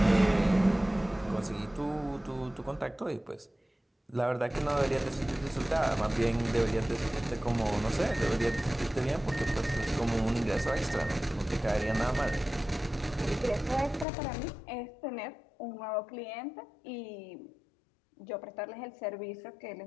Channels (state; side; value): drops out; right; at 14.1 s